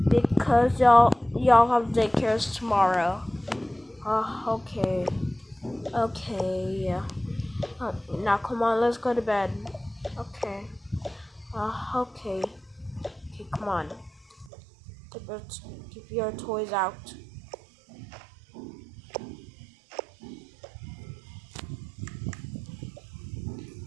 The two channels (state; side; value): drops out; left; at 14.5 s